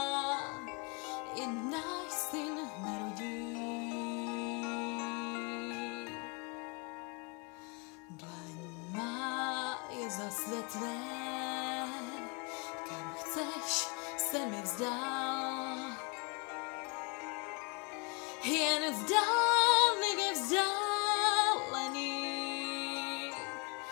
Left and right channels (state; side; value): quieter; right; 32.1 dB